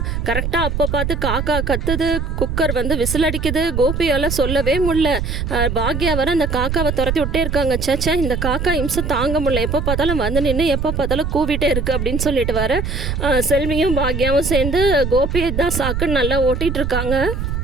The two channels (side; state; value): right; noise; rumble, 3 dB below the sound